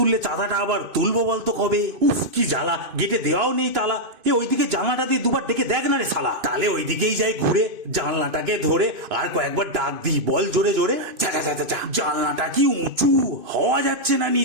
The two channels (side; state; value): left; late; 2.5 ms